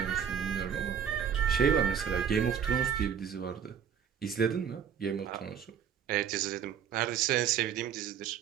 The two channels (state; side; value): quieter; left; 8.1 dB